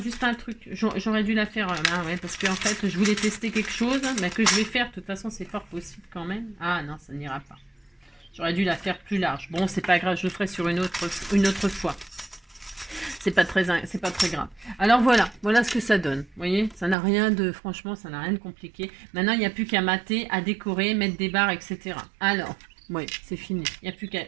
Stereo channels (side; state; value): left; drops out; at 16.9 s